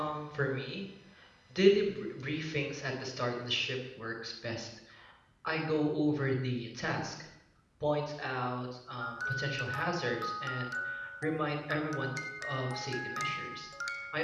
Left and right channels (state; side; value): identical; both; correlation 1.00